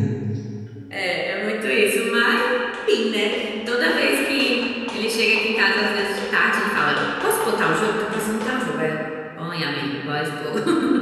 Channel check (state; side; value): identical; both; correlation 1.00